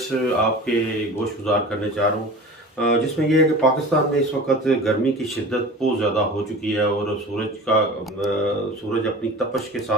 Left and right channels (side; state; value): both; normal; correlation 0.37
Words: आपके गोश गुजार करने चाह रहा हूँ, जिसमें यह है कि पाकिस्तान में इस वक्त गर्मी की शिद्दत बहुत ज़्यादा हो चुकी है और सूरज अपनी तपश के